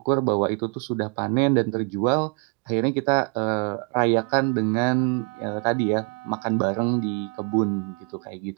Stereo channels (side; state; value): left; quieter; 36.0 dB